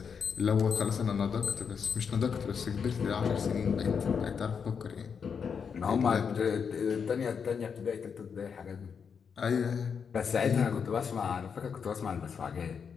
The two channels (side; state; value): right; quieter; 6.5 dB